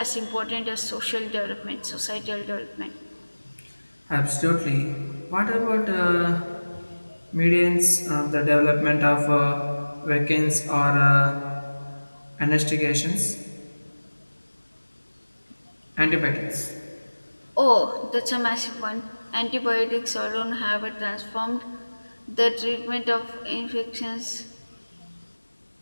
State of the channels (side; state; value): both; inverted; correlation -1.00